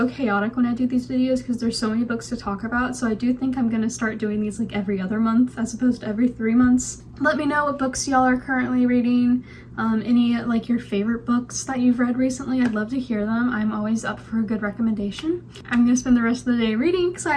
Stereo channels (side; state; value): both; identical; correlation 1.00